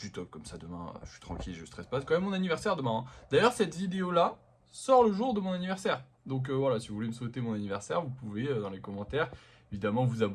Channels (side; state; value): both; identical; correlation 1.00